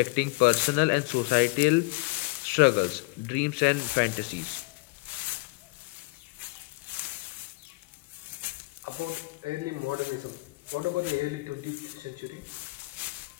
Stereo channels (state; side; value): quieter; right; 26.1 dB